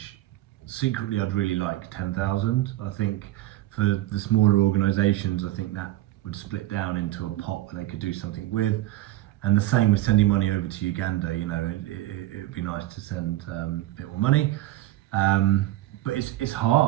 Secretly, I'd really like 10,000. I think for the smaller organisations, I think that would split down into a pot where they could do something with. And the same with sending money over to Uganda. You know, it would be nice to send a bit more money. But it's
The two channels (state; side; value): quieter; left; 15.8 dB